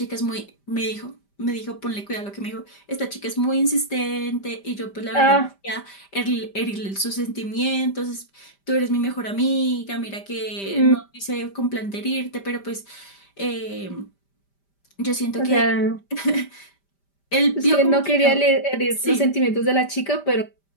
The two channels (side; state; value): right; late; 5.1 ms